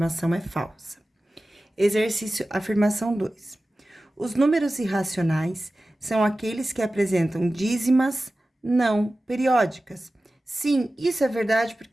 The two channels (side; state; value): both; normal; correlation 0.95